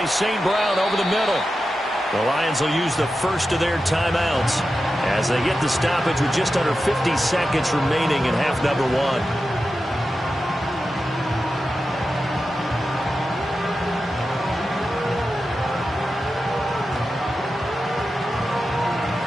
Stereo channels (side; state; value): both; normal; correlation 0.91